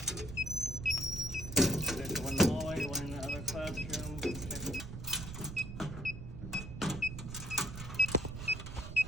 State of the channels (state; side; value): noise; right; rumble, 8 dB below the sound